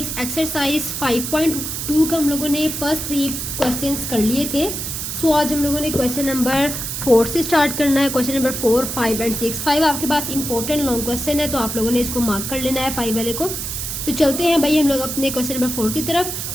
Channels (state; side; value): noise; right; hiss, 4 dB below the sound